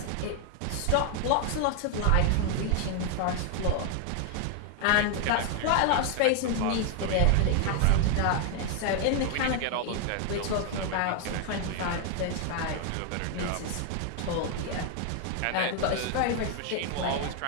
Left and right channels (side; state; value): both; different; correlation 0.00